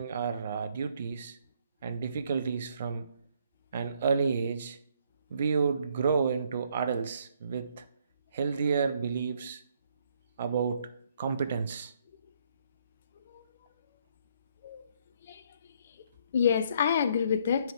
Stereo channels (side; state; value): both; inverted; correlation -0.67